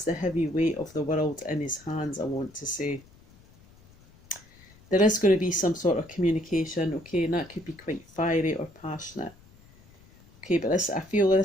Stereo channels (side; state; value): left; noise; rumble, 27 dB below the sound